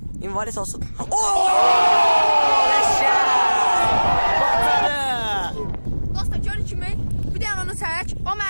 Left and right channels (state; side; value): inverted; both; correlation -1.00